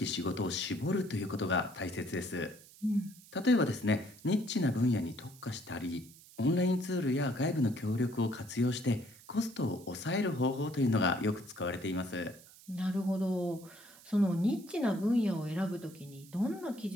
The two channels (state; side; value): noise; right; hiss, 22 dB below the sound